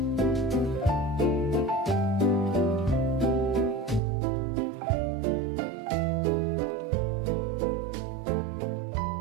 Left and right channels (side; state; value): left; drops out; at 4.0 s